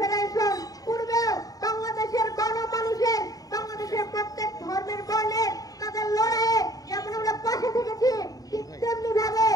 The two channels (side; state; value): right; late; 0.18 ms